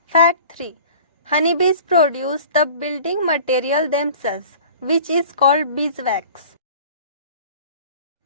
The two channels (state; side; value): inverted; both; correlation -0.44